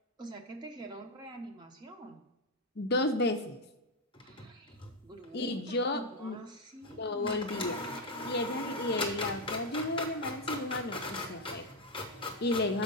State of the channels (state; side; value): normal; both; correlation 0.05